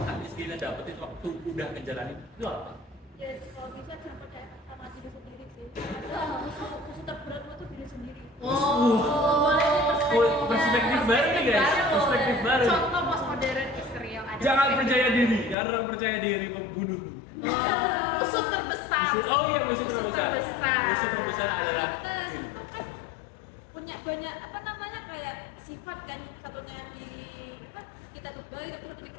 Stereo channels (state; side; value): drops out; right; at 15.6 s